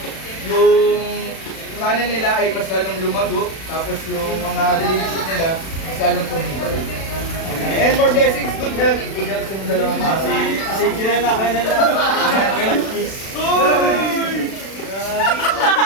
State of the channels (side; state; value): right; late; 36 ms